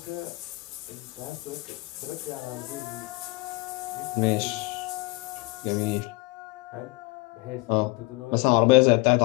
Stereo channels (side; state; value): right; quieter; 24.1 dB